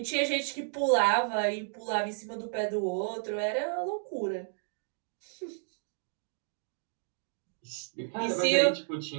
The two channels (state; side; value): silent; left; digital silence